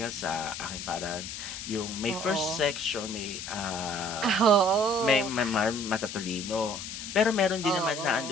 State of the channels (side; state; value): left; noise; hiss, 8 dB below the sound